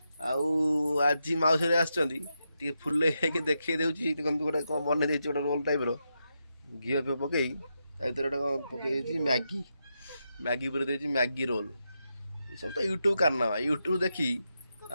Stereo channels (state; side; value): inverted; both; correlation -0.85